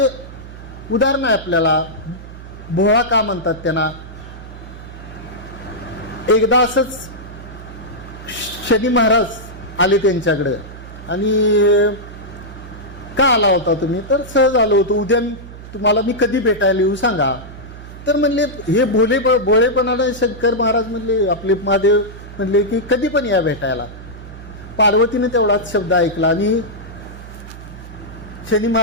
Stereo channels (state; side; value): noise; right; hum, 14 dB below the sound